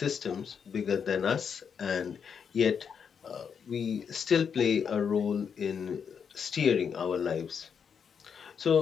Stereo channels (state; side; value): quieter; right; 6.9 dB